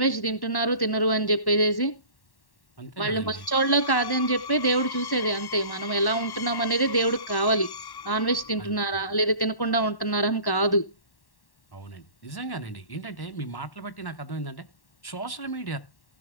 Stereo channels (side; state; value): right; late; 1.1 ms